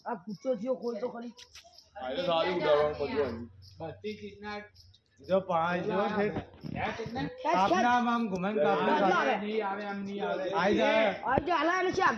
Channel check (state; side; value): identical; both; correlation 1.00